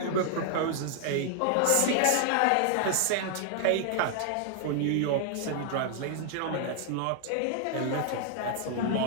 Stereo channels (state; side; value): different; both; correlation 0.00